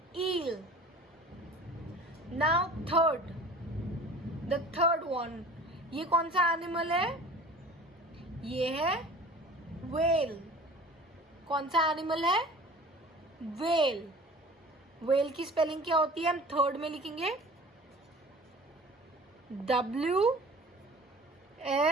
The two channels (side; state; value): both; normal; correlation 0.44